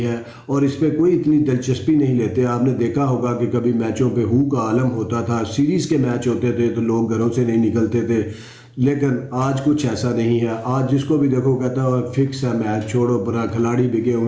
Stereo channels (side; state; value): both; identical; correlation 1.00